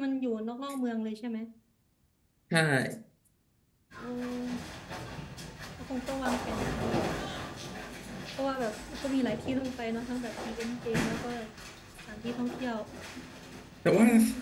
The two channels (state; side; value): identical; both; correlation 1.00